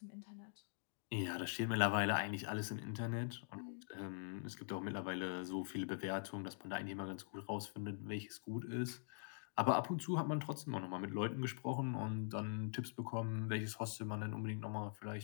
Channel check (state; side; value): silent; right; digital silence